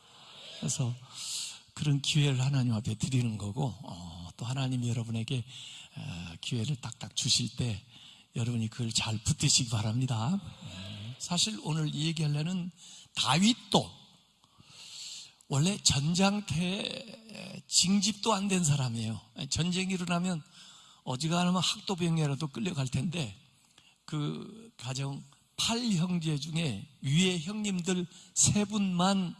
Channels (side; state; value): both; identical; correlation 1.00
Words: 그래서 그런 기회를 하나님 앞에 드리는 거고, 또 하나님이 여러분에게 기회를 딱딱 주실 때 여러분이 그걸 잘 붙드시기 바랍니다. 사실 오늘 얘기하려는 다윗도 원래 전장터에 징집도 안 된 사람이에요. 전쟁이 일어나면 어지간하면 학도병이라도 끌려갈 텐데, 그 가정 8형제 중에 위에 형님들 3분만